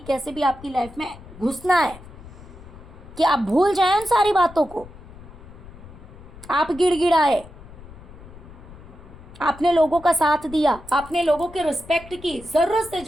कैसे भी आपकी लाइफ में घुसना है, कि आप भूल जाएं उन सारी बातों को, आप गिड़गिड़ाए, आपने लोगों का साथ दिया, आपने लोगों के रिस्पेक्ट की, जरूरत से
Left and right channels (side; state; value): left; noise; rumble, 18 dB below the sound